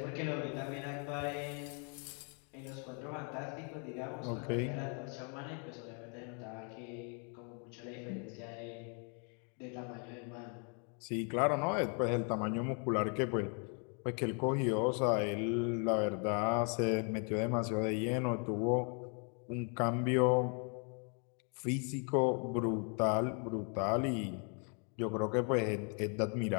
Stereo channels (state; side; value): quieter; right; 38.9 dB